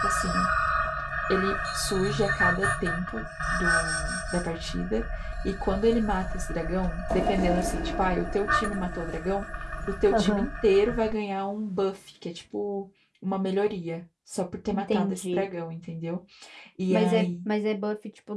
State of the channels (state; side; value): identical; both; correlation 1.00